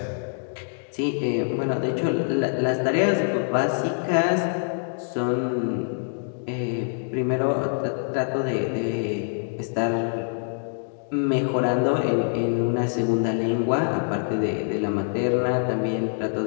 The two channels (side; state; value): right; silent; digital silence